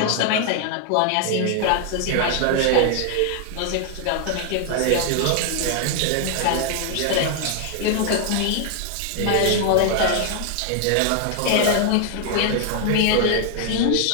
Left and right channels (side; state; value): both; different; correlation 0.00